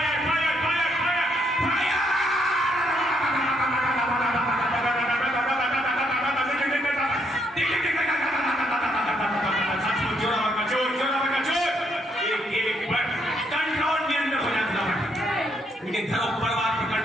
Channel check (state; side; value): normal; both; correlation 0.74